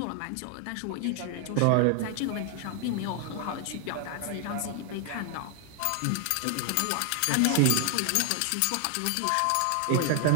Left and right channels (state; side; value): different; both; correlation 0.00